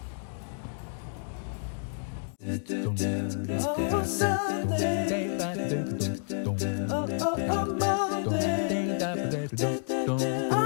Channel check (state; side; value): silent; right; digital silence